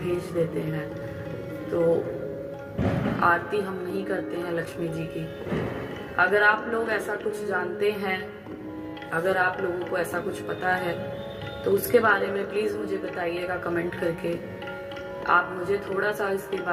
देते हैं, तो आरती हम नहीं करते हैं लक्ष्मी जी की। अगर आप लोग ऐसा कुछ जानते हैं, अगर आप लोगों को ऐसा कुछ पता है तो उसके बारे में प्लीज़ मुझे बताइएगा कमेंट करके। आप मुझे थोड़ा सा इसके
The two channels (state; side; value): identical; both; correlation 1.00